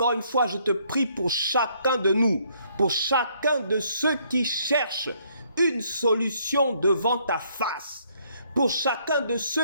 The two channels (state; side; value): inverted; both; correlation -0.67